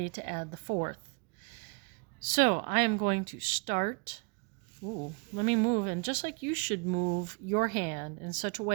to add the 4th. So I am going to start. Let me move, and just like you should move your hand in such a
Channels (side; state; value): left; quieter; 32.6 dB